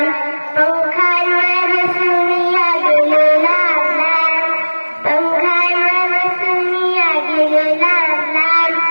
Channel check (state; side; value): inverted; both; correlation -1.00